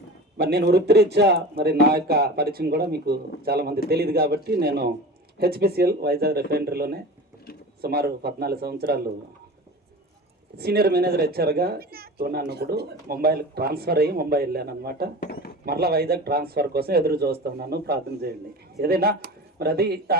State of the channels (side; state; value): both; normal; correlation 0.34